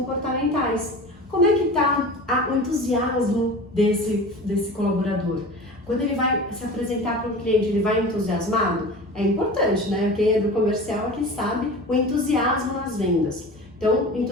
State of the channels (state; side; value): normal; both; correlation 0.35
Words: Como é que está o entusiasmo desse colaborador? Quando ele vai se apresentar para um cliente, ele vai entusiasmado? É importante, né? Quem é do comercial aqui sabe o entusiasmo nas vendas. Então,